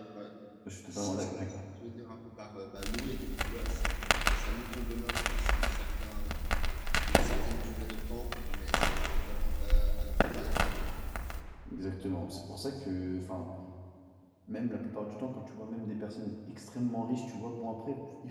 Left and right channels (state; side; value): identical; both; correlation 1.00